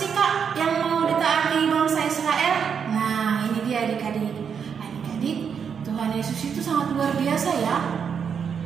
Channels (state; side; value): quieter; left; 7.0 dB